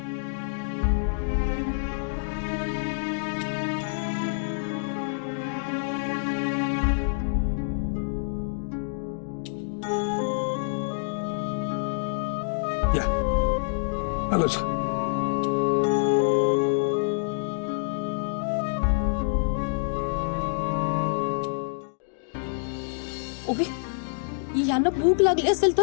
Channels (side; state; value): right; silent; digital silence